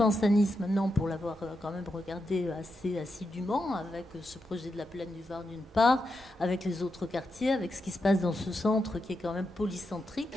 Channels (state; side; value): normal; both; correlation 0.86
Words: à Nice maintenant, pour l'avoir quand même regardé assez assidûment, avec ce projet de la plaine du Var d'une part, avec les autres quartiers, avec ce qui se passe dans ce centre qui est quand même polycentrique,